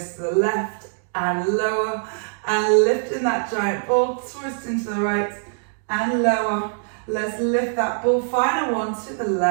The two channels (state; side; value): silent; left; 62 dB below the other